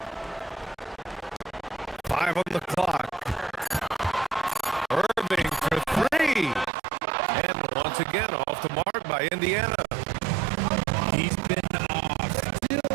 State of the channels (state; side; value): drops out; left; at 6.7 s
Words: 5 on the clock. Irving for three. And once again, off the mark by Indiana. He's been off. Still